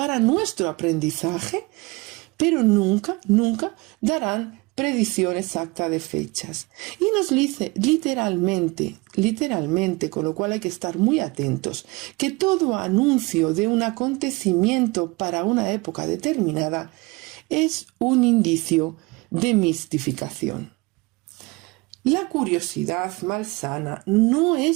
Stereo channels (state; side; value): quieter; left; 24.8 dB